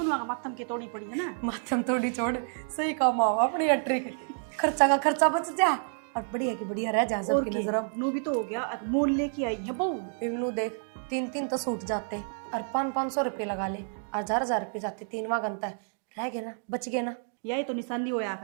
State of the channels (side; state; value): left; silent; digital silence